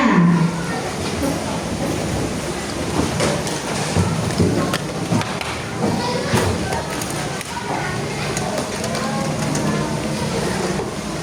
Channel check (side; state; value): both; identical; correlation 1.00